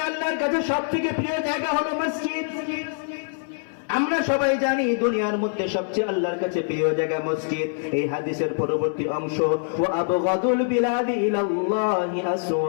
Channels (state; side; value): silent; right; 58 dB below the other